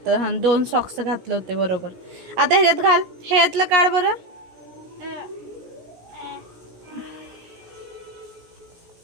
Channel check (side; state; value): left; late; 17 ms